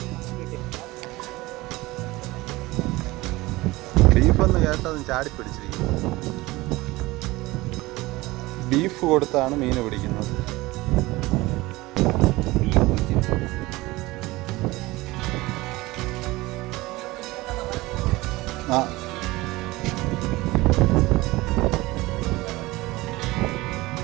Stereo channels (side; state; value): left; quieter; 20.3 dB